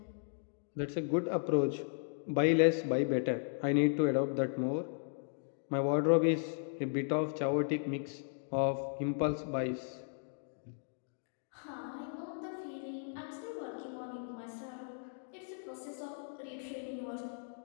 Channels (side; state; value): right; silent; digital silence